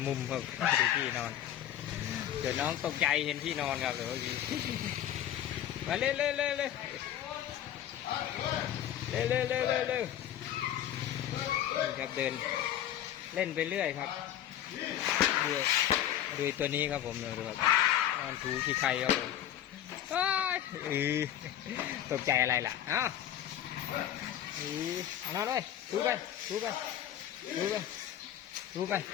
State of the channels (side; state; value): right; quieter; 11.3 dB